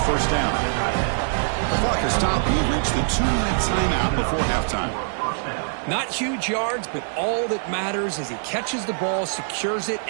first down. The clock has stopped. We've reached the 2-minute timeout before halftime. Not huge yards, but all that matters is he catches the ball, secures it,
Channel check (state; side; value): silent; left; digital silence